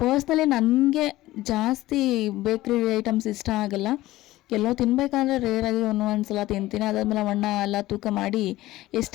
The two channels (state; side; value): quieter; right; 16.8 dB